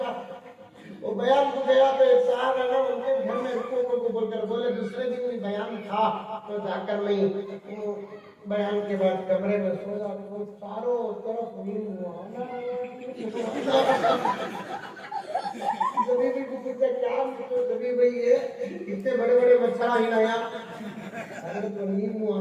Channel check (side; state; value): both; identical; correlation 1.00